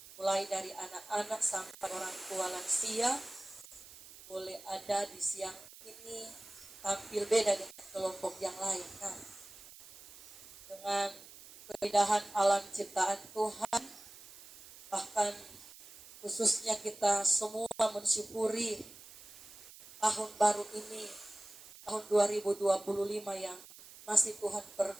Mulai dari anak-anak sampai orang tua lansia. Boleh ada di siang ini tampil beda dengan kelompok yang lain. Nah, dengan keindahan alam ciptaan Tuhan, bahkan khususnya kita semua mensyukuri tahun baru ini, tahun 2025 yang masih Tuhan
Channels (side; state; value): right; noise; hiss, 18 dB below the sound